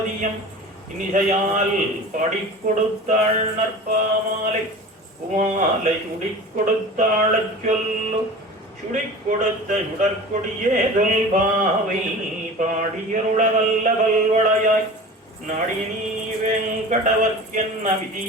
இனிசையால் பாடிக் கொடுத்தாள் நற்பாமாலை குமாலை சுடிக் கொடுத்தாளச் சொல்லு சுடிக் கொடுத்த சுடற்கொடியே தொல்பாவை பாடியருள வல்ல பல்வளையாய் நாடினீ வெங்கடவர்க்கென்ன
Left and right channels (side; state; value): both; normal; correlation 0.36